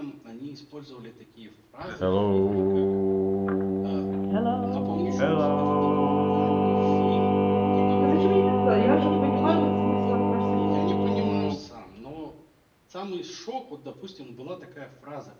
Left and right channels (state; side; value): identical; both; correlation 1.00